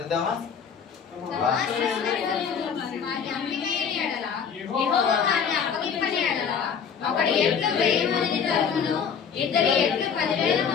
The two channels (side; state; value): right; quieter; 6.9 dB